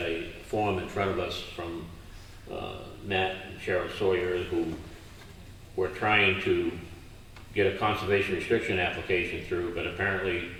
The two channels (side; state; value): both; identical; correlation 1.00